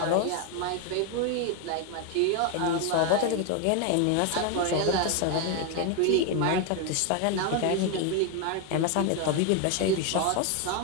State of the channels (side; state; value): both; different; correlation 0.01